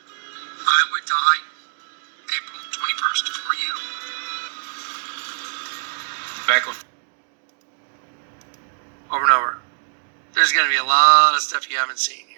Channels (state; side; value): silent; left; digital silence